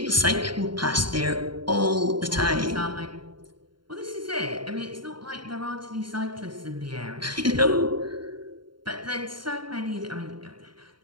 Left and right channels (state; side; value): late; left; 0.72 ms